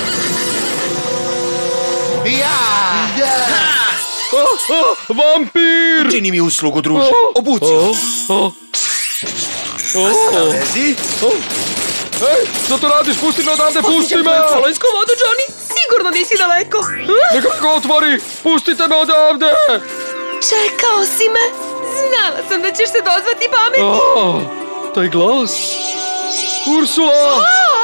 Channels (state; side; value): inverted; both; correlation -1.00